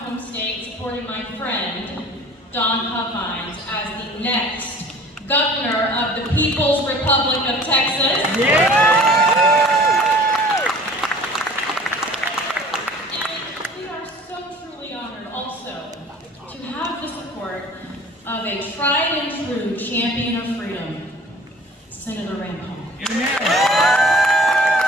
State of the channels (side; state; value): both; normal; correlation 0.47